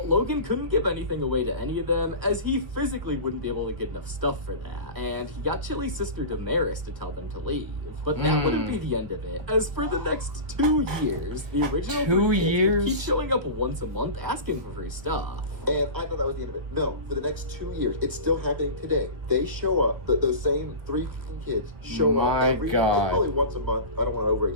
Logan couldn't give anything away to any of them, as he physically wouldn't be able to get enough stuff for that. And he got Chili's sister Damaris to tell them to leave. But that wouldn't be the end of it, as for the next 2 years, the original 2 3 kids would years? keep showing up once a month asking for free stuff. And I thought that was the end of it. No, for the next 2 years, it's still happening today. They show up, those same 3 kids show My up every God. probably once a month. I don't want to over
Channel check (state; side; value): late; left; 1.6 ms